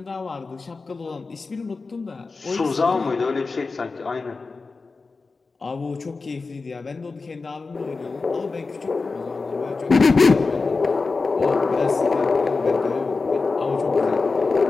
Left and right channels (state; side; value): quieter; right; 4.1 dB